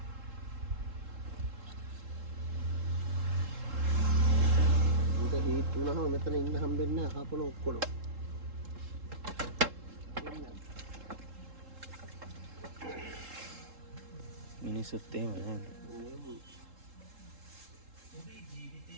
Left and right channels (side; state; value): left; late; 3.7 ms